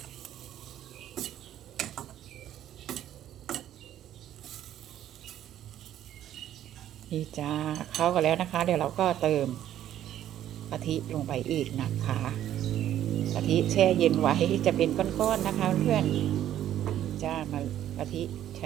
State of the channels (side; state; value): left; quieter; 11.6 dB